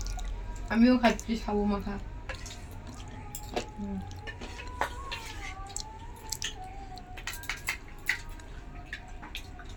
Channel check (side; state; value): both; identical; correlation 1.00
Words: আমিও খাচ্ছি সাবু মাখা।